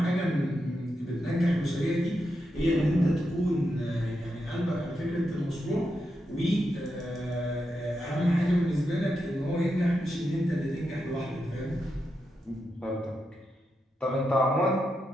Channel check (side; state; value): both; normal; correlation 0.86